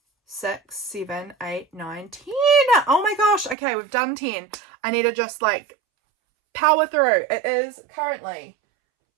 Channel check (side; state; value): left; drops out; at 3.6 s